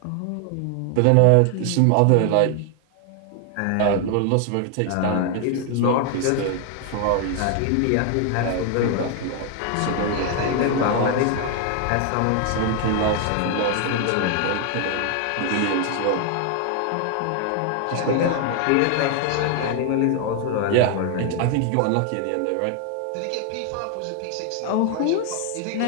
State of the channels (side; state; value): both; different; correlation 0.00